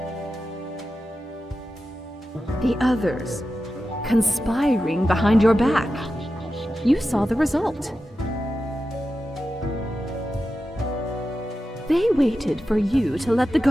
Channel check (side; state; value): both; normal; correlation 0.91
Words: The others, conspiring behind your back. You saw the result. They waited for you to let the